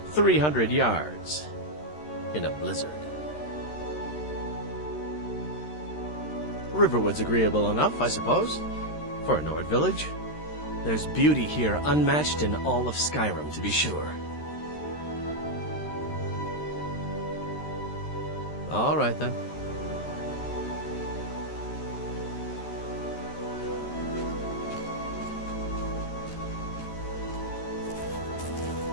300 yards in a blizzard. Riverwood's agreeable enough, I suppose, for a Nord village. There's beauty here unmatched in all of Skyrim, to be sure. All right, then.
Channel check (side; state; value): right; late; 13 ms